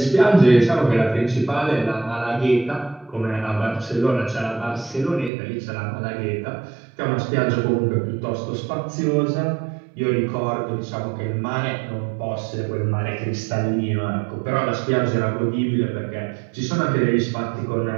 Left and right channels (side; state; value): left; drops out; at 5.3 s